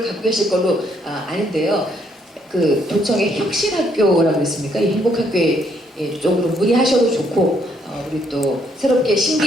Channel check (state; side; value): normal; both; correlation 0.70